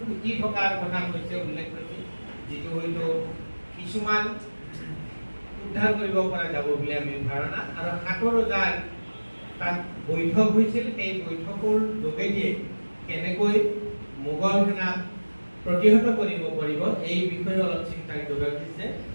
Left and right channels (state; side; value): inverted; both; correlation -1.00